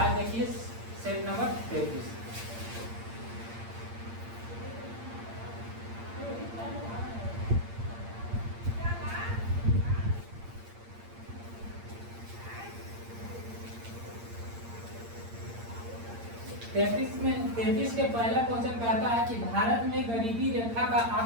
देखिए सेट नंबर 33। तैतीस के पहला क्वेश्चन कहता है कि भारत में गरीबी रेखा का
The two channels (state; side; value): late; left; 8.7 ms